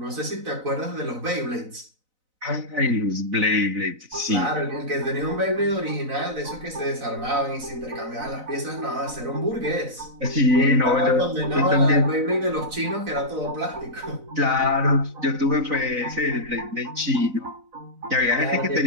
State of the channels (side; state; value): left; late; 4.0 ms